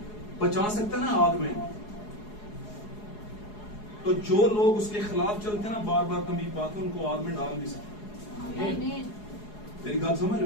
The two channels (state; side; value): late; right; 4.8 ms